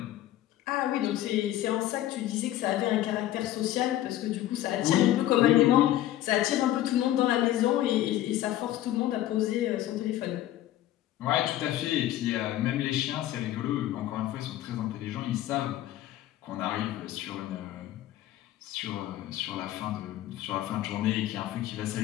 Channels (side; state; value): right; quieter; 13.6 dB